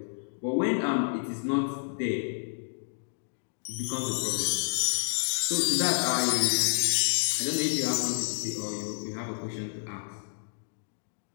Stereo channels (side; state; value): right; silent; digital silence